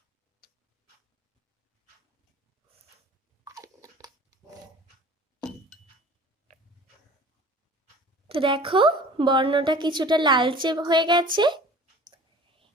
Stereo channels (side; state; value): both; normal; correlation 0.45